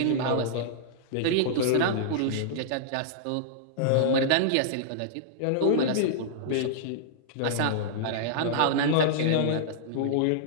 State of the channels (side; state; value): both; different; correlation -0.02